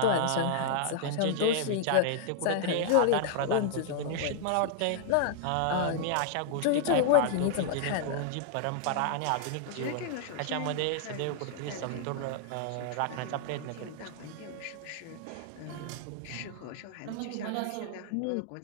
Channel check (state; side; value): different; both; correlation -0.01